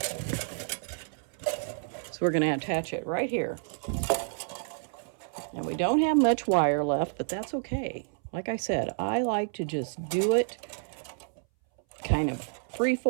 So we're going to attach it right here. And we don't have much wire left, but that's okay. Like I said, I like to just do it kind of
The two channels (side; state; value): left; silent; 58 dB below the other